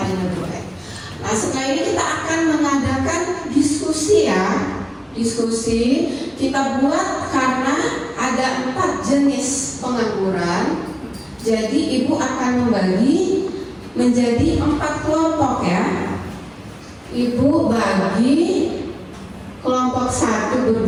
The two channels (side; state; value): both; identical; correlation 1.00